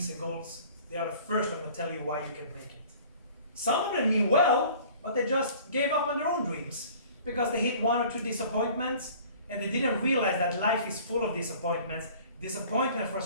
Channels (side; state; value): both; inverted; correlation -0.49